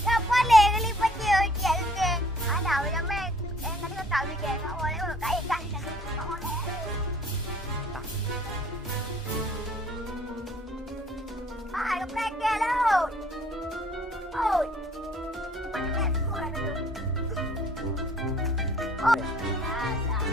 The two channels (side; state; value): both; normal; correlation 0.58